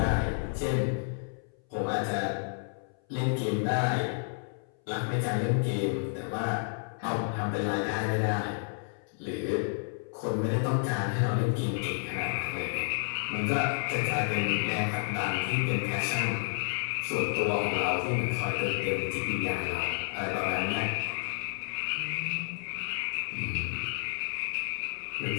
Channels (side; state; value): right; silent; 57 dB below the other